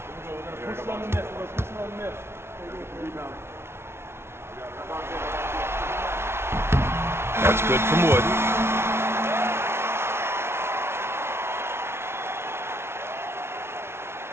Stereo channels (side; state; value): left; late; 0.12 ms